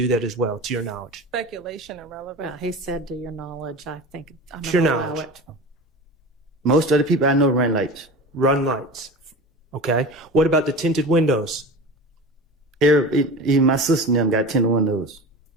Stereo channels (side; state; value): both; normal; correlation 0.32